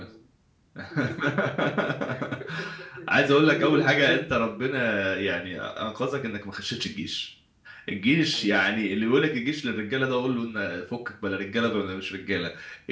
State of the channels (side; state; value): both; identical; correlation 1.00